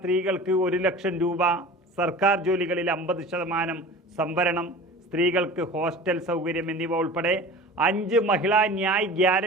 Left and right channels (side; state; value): both; normal; correlation 0.38